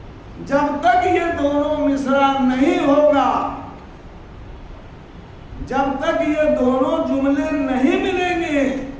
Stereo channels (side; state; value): both; identical; correlation 1.00